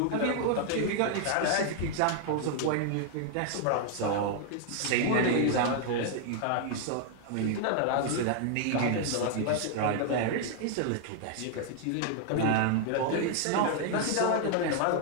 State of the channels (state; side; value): different; both; correlation 0.00